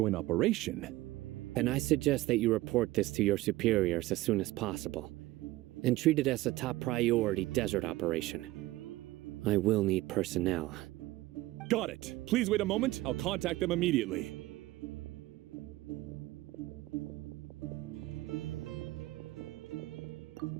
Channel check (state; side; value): quieter; left; 17.8 dB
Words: operation. And I suggest that you report this to your superiors as soon as possible, and treat it as a top priority desert operation. I will need personnel. Got it. Please wait a moment. I'll contact them immediately.